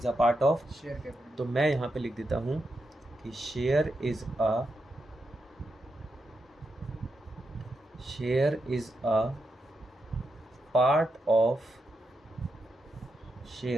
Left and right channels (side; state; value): both; normal; correlation 0.85